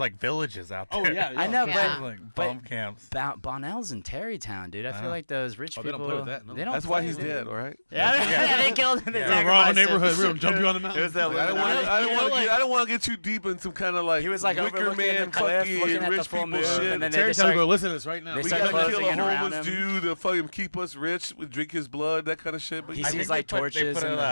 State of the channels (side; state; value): both; inverted; correlation -1.00